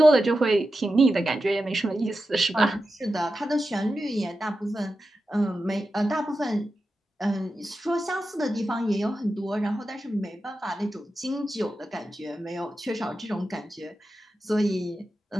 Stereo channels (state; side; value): normal; both; correlation 0.91